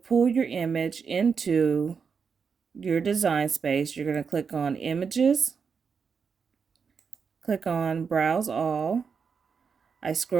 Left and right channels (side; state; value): left; quieter; 5.9 dB